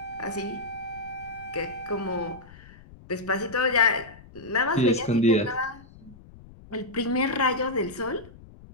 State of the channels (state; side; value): noise; left; rumble, 20 dB below the sound